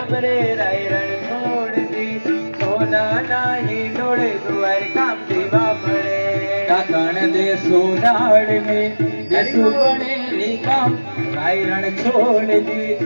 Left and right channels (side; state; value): both; inverted; correlation -1.00